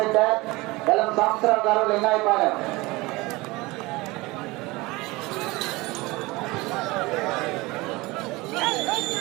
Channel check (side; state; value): left; quieter; 22.2 dB